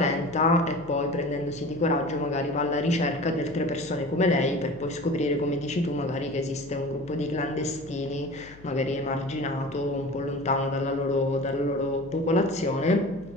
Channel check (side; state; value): left; noise; hum, 21 dB below the sound